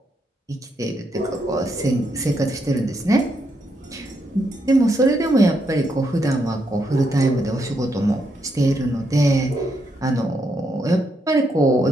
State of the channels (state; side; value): normal; both; correlation 0.79